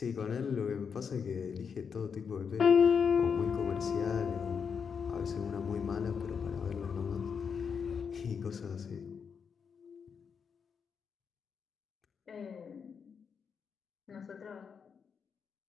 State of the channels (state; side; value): quieter; right; 6.4 dB